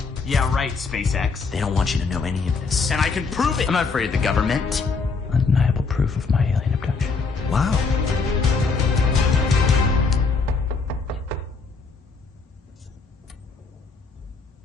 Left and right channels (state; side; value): quieter; right; 4.6 dB